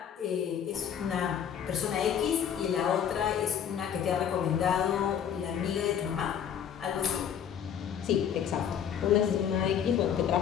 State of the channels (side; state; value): right; quieter; 8.7 dB